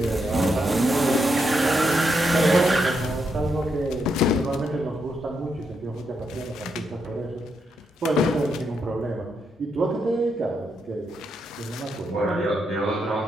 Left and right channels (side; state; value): both; normal; correlation 0.81